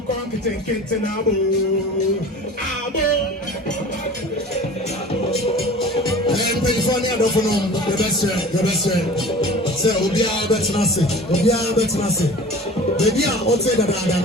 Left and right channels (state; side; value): normal; both; correlation 0.41